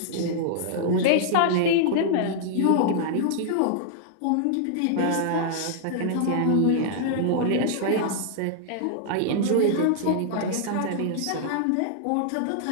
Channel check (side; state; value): both; different; correlation -0.01